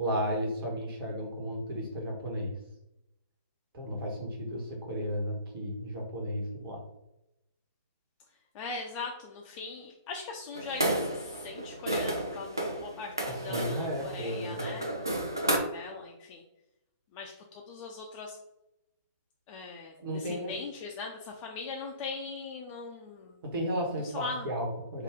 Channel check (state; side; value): inverted; both; correlation -0.47